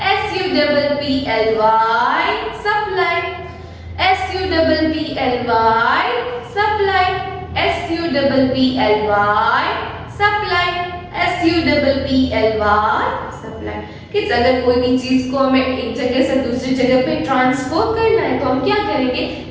supply. SUPPLY, supply. SUPPLY, supply. SUPPLY, supply. Kids, अगर कोई भी चीज को हमें एक जगह से दूसरी जगह पे ट्रांसफर करना है तो हम क्या करेंगे?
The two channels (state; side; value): identical; both; correlation 1.00